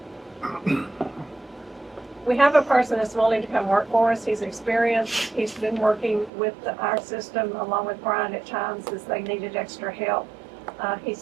We have a person that's willing to come work for us. He's experienced. He's been working with our system along with Brian at times as they needed extra help.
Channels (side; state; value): left; drops out; at 6.3 s